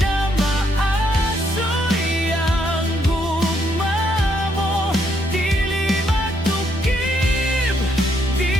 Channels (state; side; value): normal; both; correlation 0.73